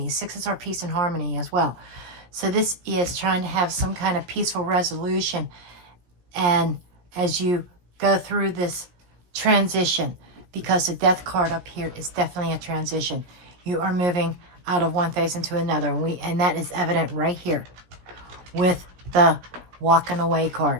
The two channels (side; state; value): left; late; 17 ms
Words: Sixes are peace and harmony as well. So this is trying to have some kind of peaceful resolution. And as you go through this transition, because the Death card up here is definitely a transition. You are moving out of one phase into another. And that is evident right here with the walking away